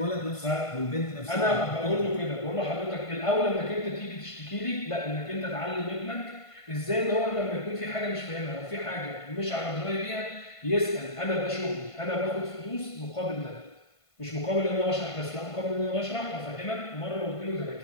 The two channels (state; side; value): late; right; 1.5 ms